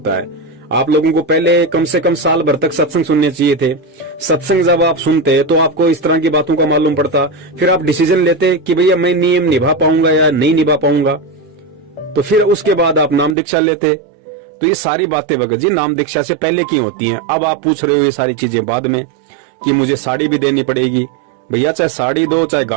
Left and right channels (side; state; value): left; drops out; at 13.4 s